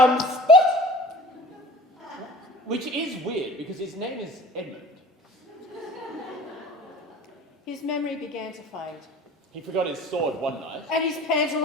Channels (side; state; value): both; normal; correlation 0.43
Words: spot!" Which is weird, because his name is Edmund. His memory began to fade. He forgot his sword one night. And his